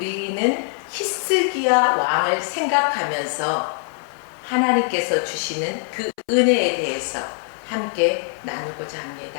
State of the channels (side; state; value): right; silent; 61 dB below the other